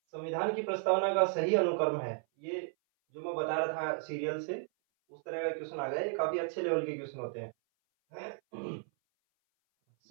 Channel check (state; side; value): silent; left; 55 dB below the other